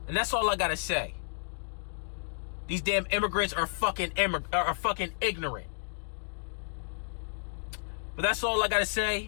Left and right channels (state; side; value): silent; right; digital silence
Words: And that's all I gotta say. These damn immigrants are fucking ignorant. But that's all I gotta